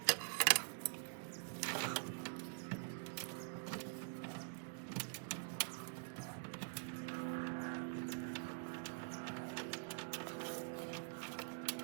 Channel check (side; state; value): left; silent; digital silence